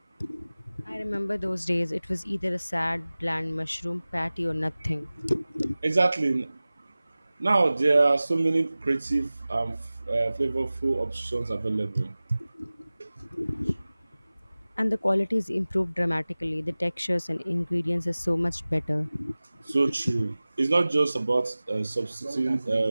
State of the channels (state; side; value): inverted; both; correlation -0.98